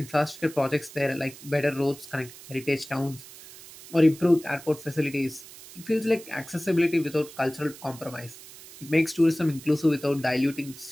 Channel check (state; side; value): noise; right; hiss, 18 dB below the sound